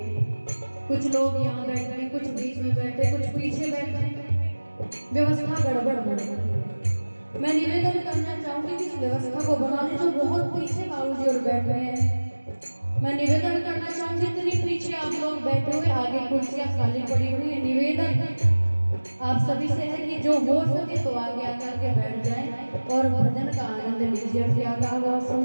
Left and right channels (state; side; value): inverted; both; correlation -1.00